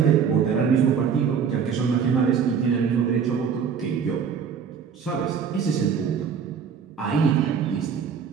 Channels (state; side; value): quieter; left; 6.9 dB